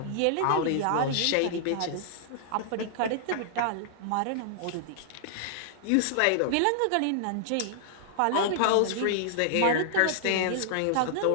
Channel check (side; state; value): both; different; correlation -0.01